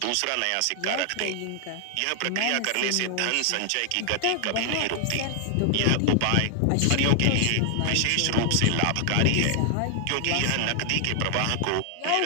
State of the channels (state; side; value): different; both; correlation 0.00